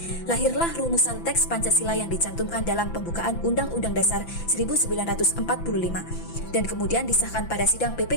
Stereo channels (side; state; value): right; late; 5.9 ms